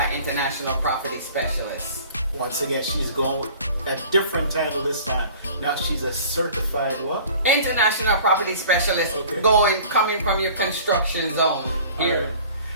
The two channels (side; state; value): both; inverted; correlation -0.47